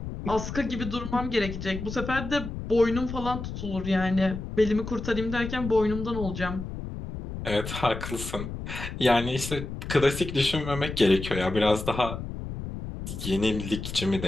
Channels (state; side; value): noise; left; rumble, 7 dB below the sound